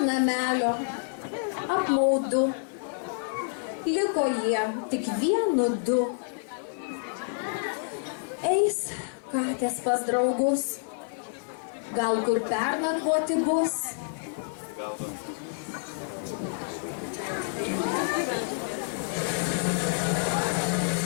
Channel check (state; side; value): silent; right; digital silence